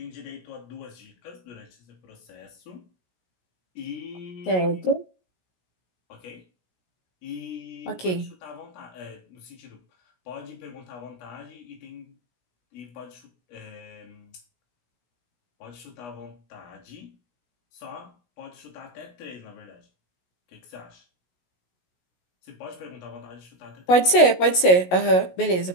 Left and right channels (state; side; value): late; right; 17 ms